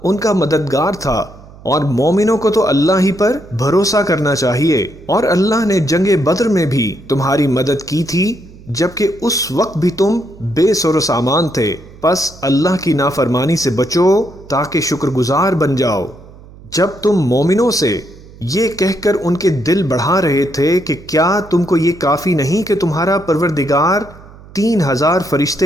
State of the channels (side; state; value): right; noise; hum, 21 dB below the sound